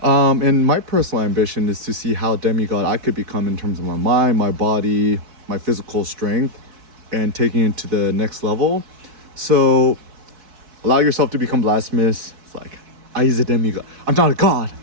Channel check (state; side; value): late; left; 4.6 ms